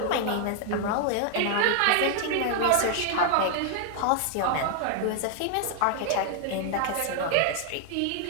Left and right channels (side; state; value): both; different; correlation 0.00